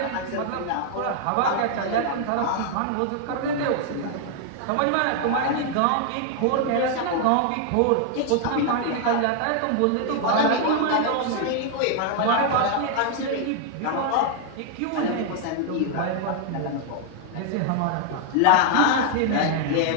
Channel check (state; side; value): different; both; correlation 0.00